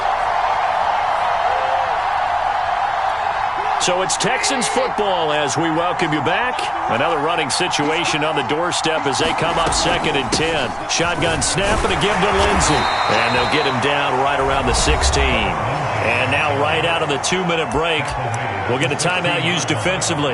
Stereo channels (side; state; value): both; identical; correlation 1.00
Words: So it's Texans football as we welcome you back. Another running situation on the doorstep as they come up 2nd and 10. Shotgun snap and a give to Lindsey. And they'll get him down right around the 16. And now right out of the 2-minute break, we'll get a timeout used